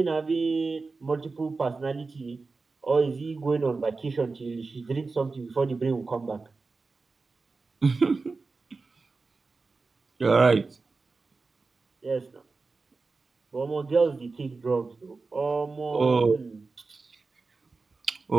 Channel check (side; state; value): left; quieter; 4.0 dB